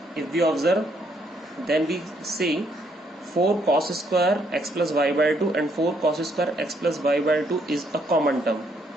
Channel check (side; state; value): both; normal; correlation 0.71